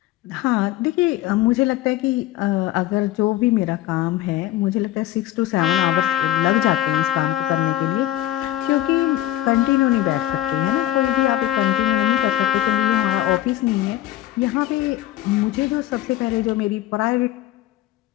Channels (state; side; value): quieter; right; 14.3 dB